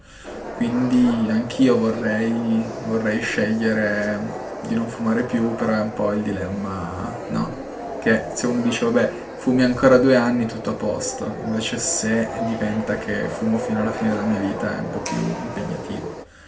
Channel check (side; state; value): both; identical; correlation 1.00